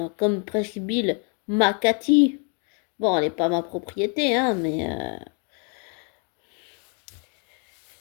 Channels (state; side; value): quieter; right; 39.5 dB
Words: comme presque Bill, ma Cathy. Bon, elle n'est pas ma propriété hein,